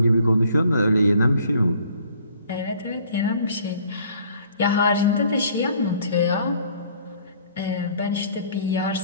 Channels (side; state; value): both; inverted; correlation -0.56